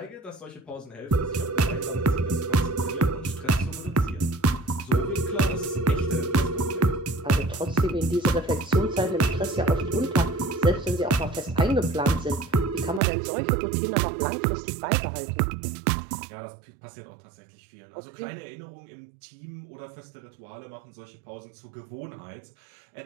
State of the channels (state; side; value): drops out; left; at 13.0 s